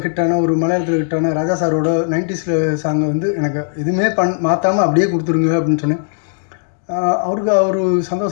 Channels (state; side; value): silent; right; 68 dB below the other